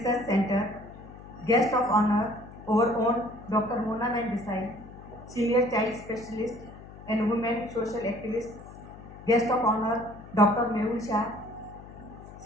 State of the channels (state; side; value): noise; left; hum, 17 dB below the sound